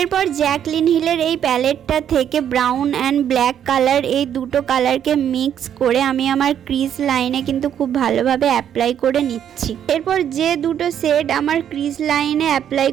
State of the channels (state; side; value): quieter; left; 9.5 dB